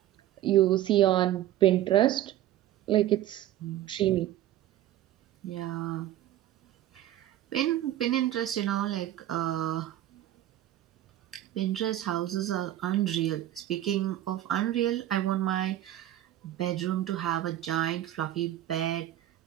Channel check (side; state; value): left; quieter; 13.1 dB